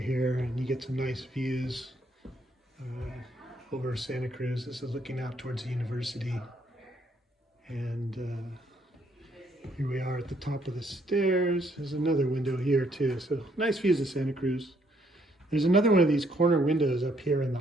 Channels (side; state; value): both; normal; correlation 0.70